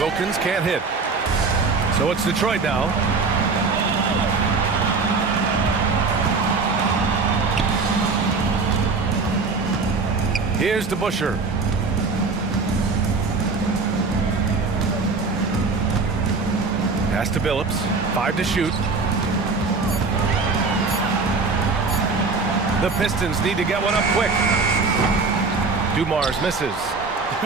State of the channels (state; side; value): quieter; left; 4.2 dB